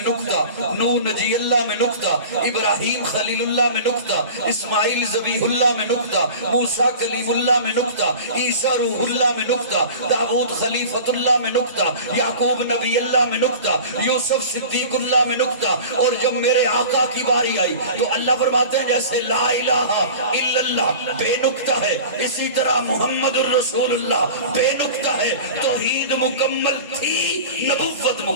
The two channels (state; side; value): inverted; both; correlation -0.37